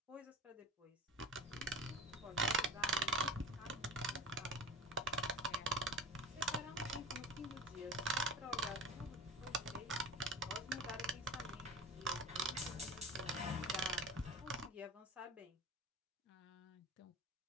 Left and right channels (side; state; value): both; normal; correlation 0.32